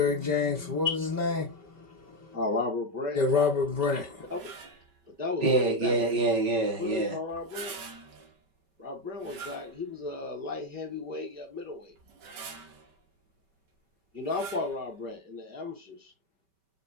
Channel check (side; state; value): left; late; 5.2 ms